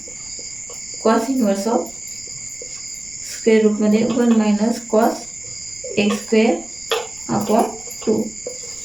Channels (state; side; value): noise; right; rumble, 25 dB below the sound